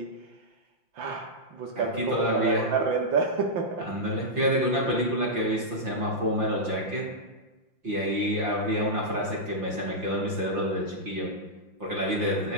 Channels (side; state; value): left; late; 5.8 ms